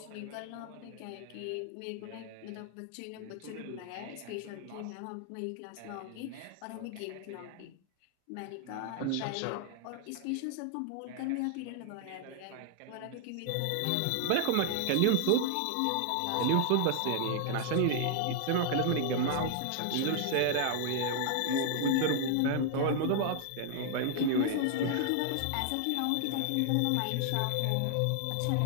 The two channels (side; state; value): both; different; correlation 0.00